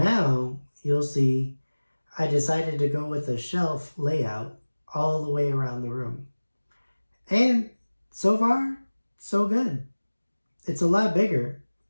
you'll see, I decided to go with a shelf layout all the way around the room. And so far, so good. It's a lot bigger.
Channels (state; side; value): inverted; both; correlation -1.00